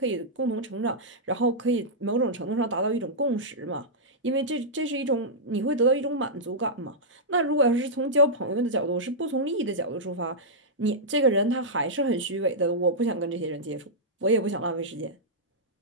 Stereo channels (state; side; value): normal; both; correlation -0.11